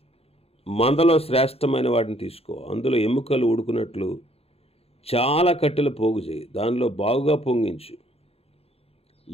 మందలో శ్రేష్టమైన వాటిని తీసుకో, అందులో ఎముకలు ఉడుకున్నట్లు చాలా కట్టెలు పోగు చేయి, దానిలో బాగుగా పొంగించు,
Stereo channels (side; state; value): right; late; 0.29 ms